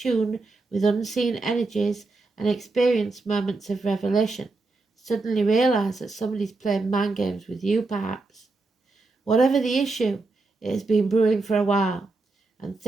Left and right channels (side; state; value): left; quieter; 3.5 dB